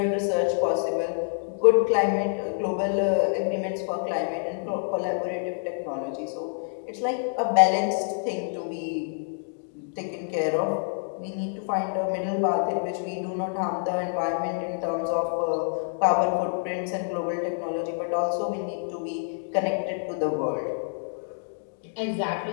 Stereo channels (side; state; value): right; silent; digital silence